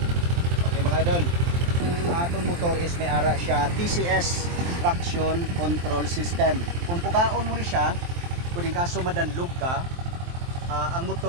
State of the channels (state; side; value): late; left; 23 ms